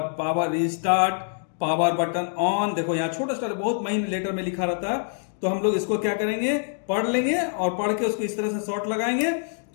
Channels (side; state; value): right; silent; digital silence